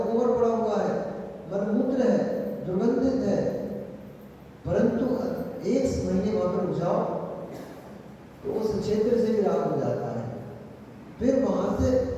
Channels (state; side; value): identical; both; correlation 1.00